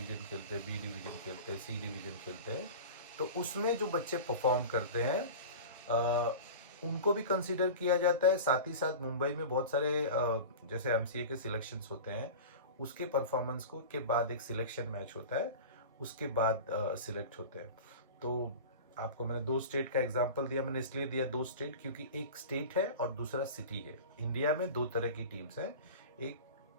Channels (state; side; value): inverted; both; correlation -0.33